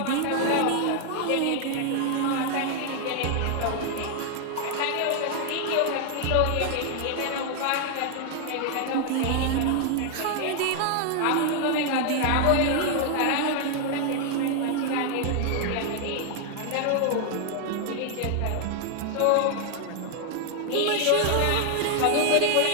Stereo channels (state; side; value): different; both; correlation 0.00